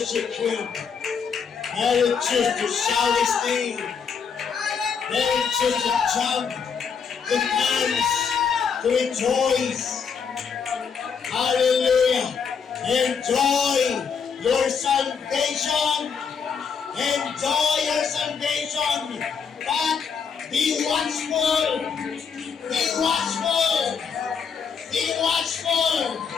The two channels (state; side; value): quieter; right; 6.3 dB